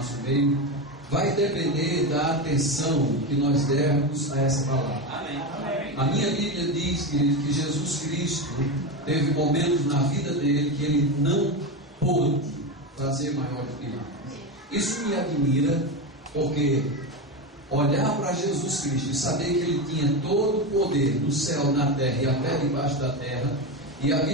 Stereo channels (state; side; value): normal; both; correlation 0.17